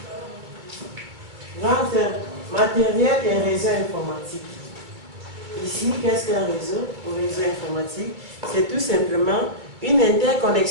Grand 1, matériel et réseau informatique. Ici, qu'est-ce qu'un réseau? Un réseau informatique, c'est tout simplement une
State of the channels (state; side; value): late; left; 2.3 ms